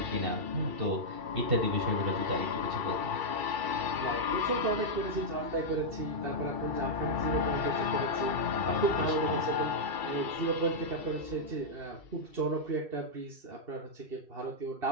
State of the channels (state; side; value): late; left; 2.3 ms